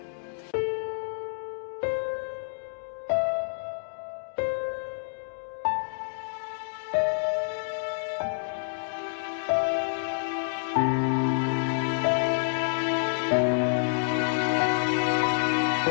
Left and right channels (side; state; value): right; silent; digital silence